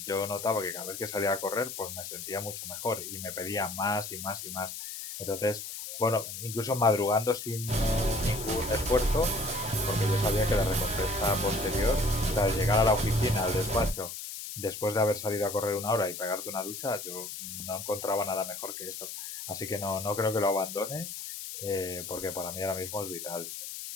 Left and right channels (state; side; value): noise; left; hiss, 8 dB below the sound